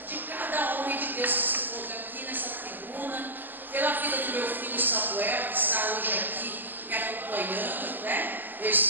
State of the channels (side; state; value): left; late; 0.089 ms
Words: de cada homem de Deus que se encontra aqui nessa tribuna, pela vida do meu filho Samuel, que está hoje aqui me acompanhando, né? Meu